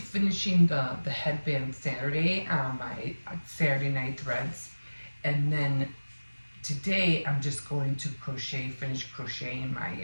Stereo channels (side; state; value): both; inverted; correlation -1.00